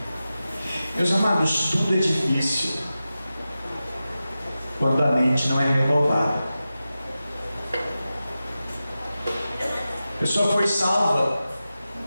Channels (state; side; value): inverted; both; correlation -0.93